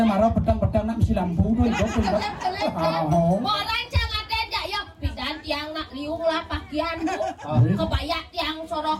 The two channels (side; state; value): both; identical; correlation 1.00